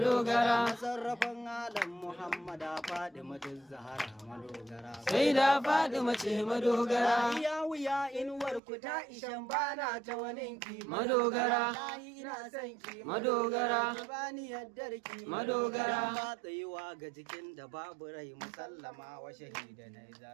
sarrafan alam Muhammada Fadimatul Zahara madogara sai da Fadima ce madogara ya wuya inuwar ku ta ishan bana ta waninki madogara ina son ki madogara bani yaddarki madogara ba tsayuwa ga jikin da babu rai musallama wa shahida na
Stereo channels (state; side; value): drops out; left; at 8.6 s